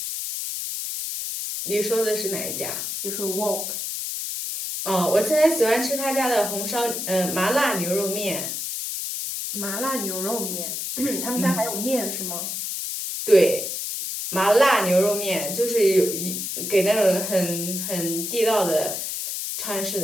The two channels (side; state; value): left; noise; hiss, 4 dB below the sound